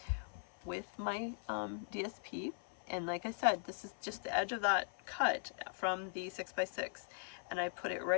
with my DSP. And like I said, this is just the edge of that cut from the 6x6. And I put it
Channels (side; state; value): right; silent; 51 dB below the other